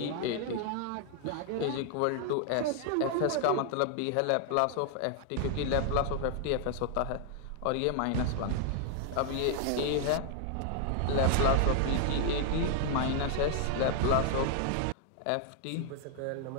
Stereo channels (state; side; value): different; both; correlation 0.00